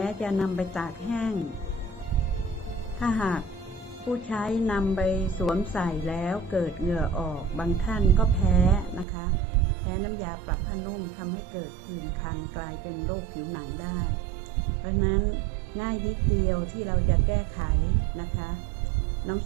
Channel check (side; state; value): left; drops out; at 9.1 s